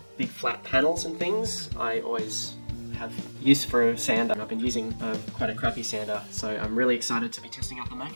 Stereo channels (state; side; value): inverted; both; correlation -1.00